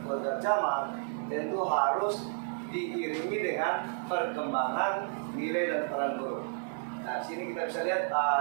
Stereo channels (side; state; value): left; silent; digital silence